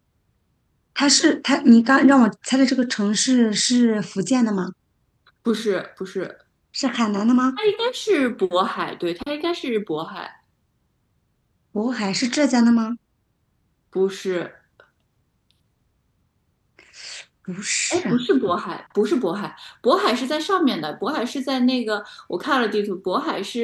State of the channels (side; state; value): both; identical; correlation 1.00